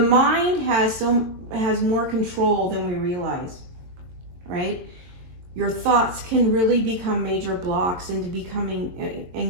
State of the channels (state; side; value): late; left; 22 ms